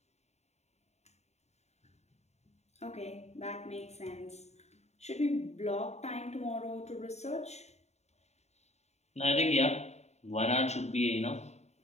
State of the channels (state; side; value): late; right; 0.32 ms